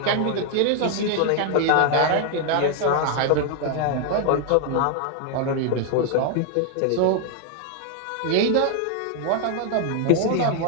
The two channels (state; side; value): different; both; correlation 0.00